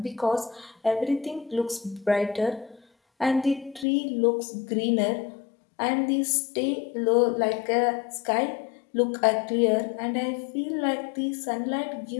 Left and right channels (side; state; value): right; drops out; at 3.9 s